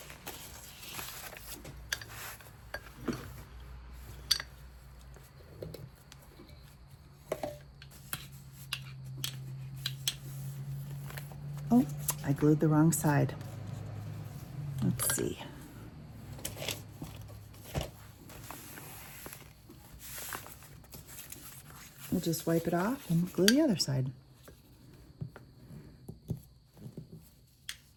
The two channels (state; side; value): identical; both; correlation 1.00